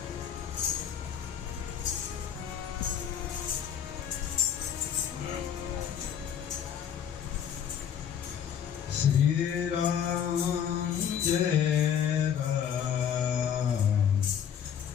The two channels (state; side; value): quieter; right; 8.6 dB